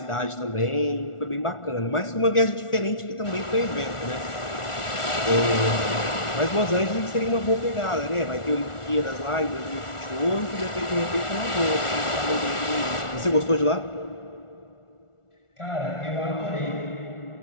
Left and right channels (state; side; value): late; right; 1.4 ms